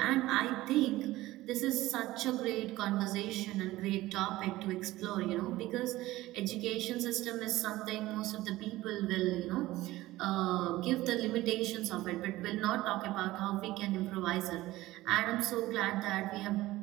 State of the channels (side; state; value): left; quieter; 17.3 dB